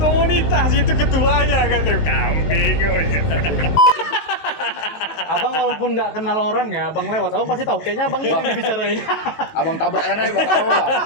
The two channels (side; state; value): right; late; 19 ms